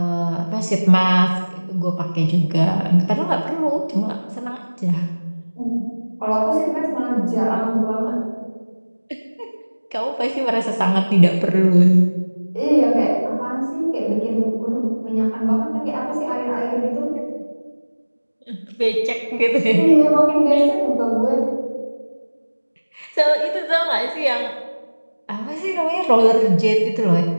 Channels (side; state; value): both; inverted; correlation -1.00